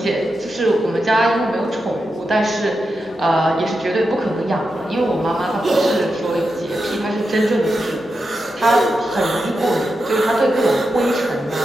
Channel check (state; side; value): normal; both; correlation 0.88